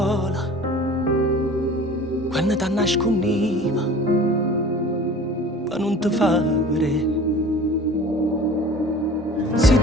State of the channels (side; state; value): both; normal; correlation 0.43